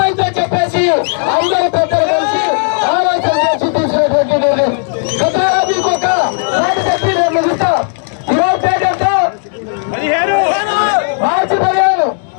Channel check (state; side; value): silent; right; 66 dB below the other